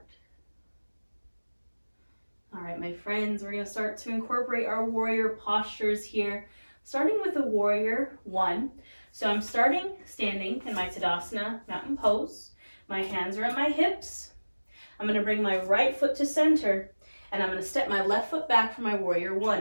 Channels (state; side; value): inverted; both; correlation -1.00